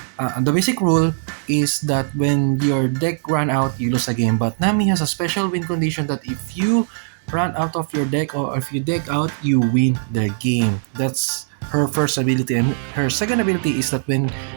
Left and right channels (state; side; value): silent; left; digital silence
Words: the basic rule is that when your deck run out, you lose a game. But Nami has a special win condition that if you run out of your deck or if you deck out, you win the game. That's her first ability, and her second ability is that when